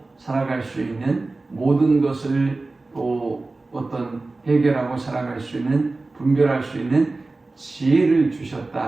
살아갈 수 있는 모든 것을 또 어떤 해결하고 살아갈 수 있는 분별할 수 있는 지혜를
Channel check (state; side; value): quieter; left; 3.3 dB